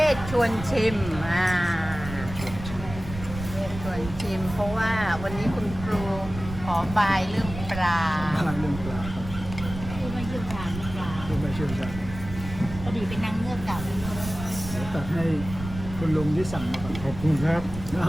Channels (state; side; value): noise; right; rumble, 10 dB below the sound